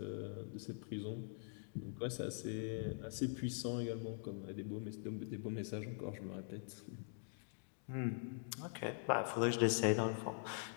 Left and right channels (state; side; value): silent; right; digital silence